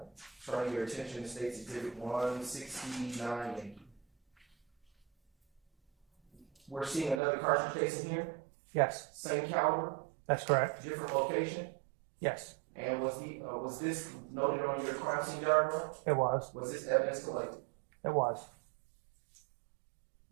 Turning your attention to State's Exhibit 169 Yankee. We're seeing another cartridge case in here, Yes. same caliber, That's correct. different location. Yes. And was this noted on your crime scene diagram? It was. Was this evidence collected? It was.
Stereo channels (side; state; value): left; drops out; at 7.2 s